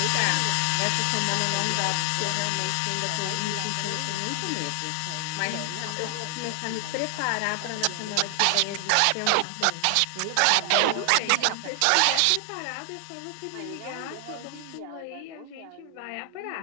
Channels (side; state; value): both; different; correlation 0.00